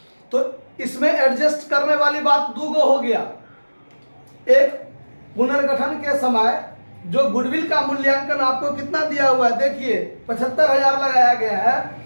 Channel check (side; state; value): both; inverted; correlation -1.00